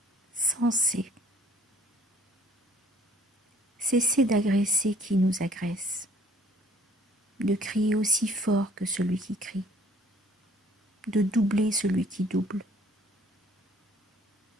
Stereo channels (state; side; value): normal; both; correlation 0.57